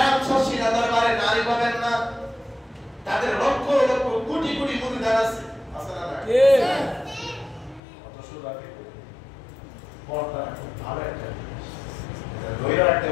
শশীনা দরবারে নারী পাবেন না। তাদের লক্ষ লক্ষ কোটি কোটি মুরিদান আছে, আছে না? কত সুন্দর পর্দা ভালো একটা দইরা রাখতে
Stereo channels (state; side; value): drops out; right; at 7.8 s